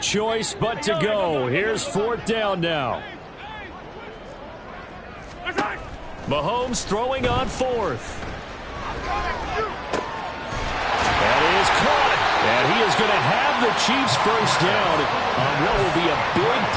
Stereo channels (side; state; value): both; identical; correlation 1.00